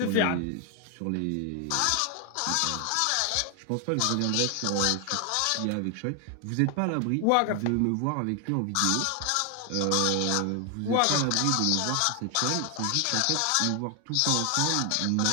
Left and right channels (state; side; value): different; both; correlation 0.00